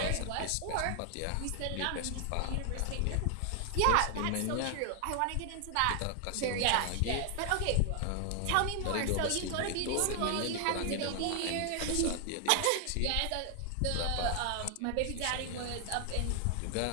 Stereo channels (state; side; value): different; both; correlation 0.00